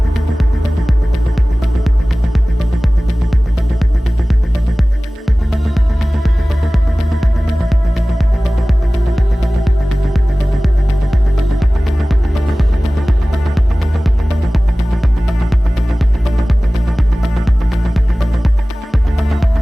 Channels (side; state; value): both; normal; correlation 0.98